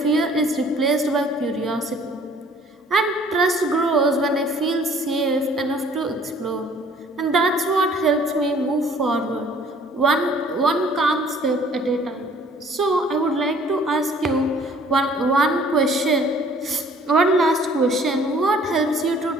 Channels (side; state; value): both; normal; correlation 0.55